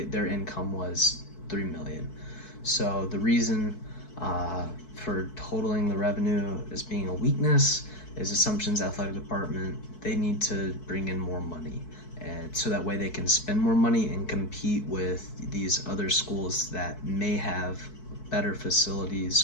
income was 3 million. So the reason for totaling the revenue as being a weakness is Assumption's athletic department, they need to bring in more money, and so that way they can spend more money and compete with these other schools that may have better facilities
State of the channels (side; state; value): right; late; 4.6 ms